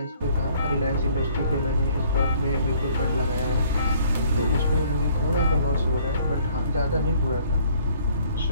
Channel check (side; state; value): both; inverted; correlation -0.59